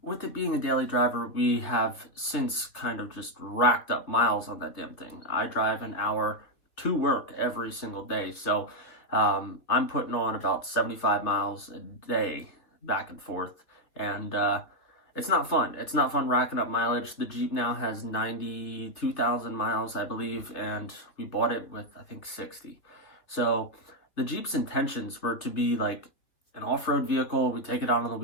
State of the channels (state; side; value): late; right; 3.4 ms